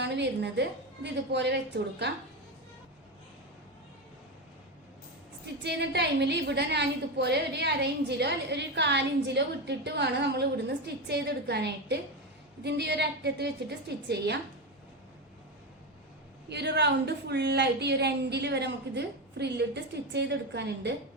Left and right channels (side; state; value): both; normal; correlation 0.15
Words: വരുന്നത്. ഇത് ഇതുപോലെ വെച്ചുകൊടുക്കാം. സ്റ്റിച്ച് ചെയ്യുന്ന ടൈമിൽ ഇവിടെ ഞാൻ ഇതുപോലെ ഒരു 1/2 ഇഞ്ചിലോ ഒരു 1/4 ഇഞ്ചിലോ വിട്ടിട്ട് വേണം നമ്മൾ ഇവിടുന്ന് സ്റ്റിച്ച് ചെയ്തെടുക്കാനായിട്ട്. ഇതിന്റെ ഈ ഒരു അറ്റത്ത് വെച്ചിട്ട് സ്റ്റിച്ച് ചെയ്യാം. ഈ ഒരു റൗണ്ട് ഫുള്ളായിട്ട് ഈ ഒരു എൻഡിൽ വരെ നമുക്കിത് ഫ്രില്ലിട്ട് സ്റ്റിച്ച് ചെയ്തെടുക്കാനുണ്ട്.